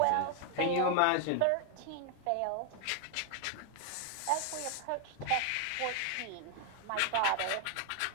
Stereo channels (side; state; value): both; different; correlation 0.00